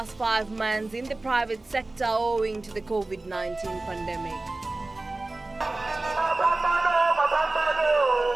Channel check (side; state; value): left; quieter; 3.0 dB